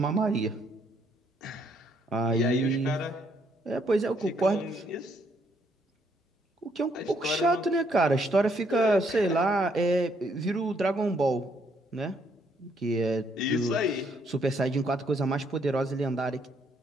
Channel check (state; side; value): normal; both; correlation 0.70